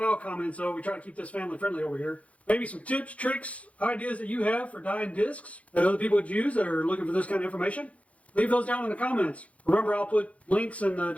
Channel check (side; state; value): right; late; 0.065 ms